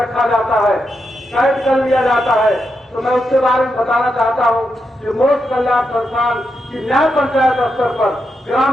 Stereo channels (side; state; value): both; normal; correlation 0.84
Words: जाता है, कैद कर लिया जाता है। तो मैं उसके बारे में बताना चाहता हूं कि मोक्ष कल्याण संस्थान की न्याय पंचायत स्तर पर,